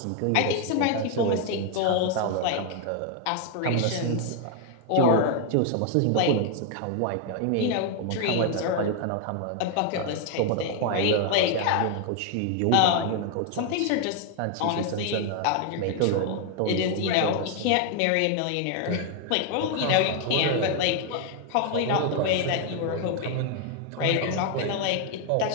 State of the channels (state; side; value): different; both; correlation 0.01